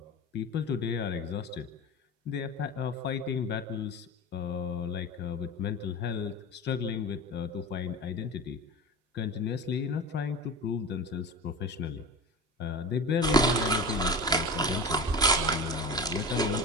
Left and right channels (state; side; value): normal; both; correlation 0.30